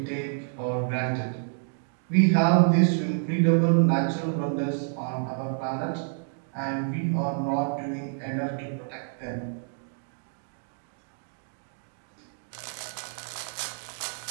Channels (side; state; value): left; silent; digital silence